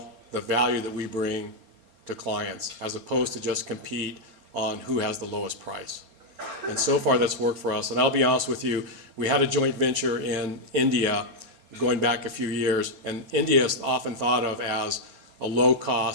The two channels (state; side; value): late; left; 4.3 ms